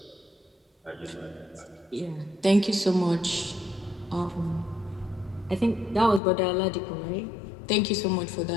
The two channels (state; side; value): drops out; right; at 6.2 s